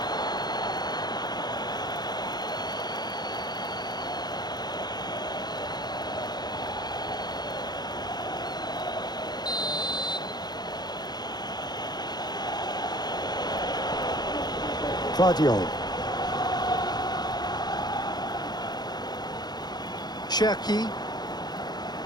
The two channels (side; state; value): right; late; 0.20 ms